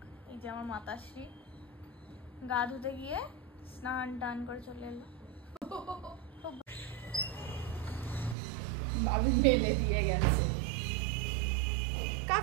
এই যে আমার মাতাশ্রী, গা ধুতে গিয়ে স্নান টান করে চলে এলো। ভাবি মেলে দিয়ে গেছে,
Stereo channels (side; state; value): left; drops out; at 8.3 s